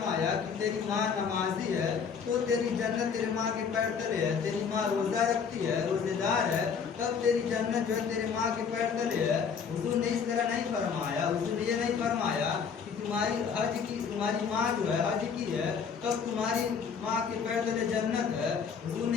کہ تیری ماں نمازی ہے تو تیری جنت تیری ماں کے پیر تلے ہے. تیری ماں روزہ رکھتی ہے، روزے دار ہے، تب تیری جنت جو ہے تیری ماں کے پیر تلے ہے. حضور نے اس طرح نہیں فرمایا. حضور نے یہ نہیں فرمایا کہ تمہاری ماں جو ہے حج کی ہے تب تمہاری ماں کے پیر تلے جنت ہے. حضور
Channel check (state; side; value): quieter; right; 6.4 dB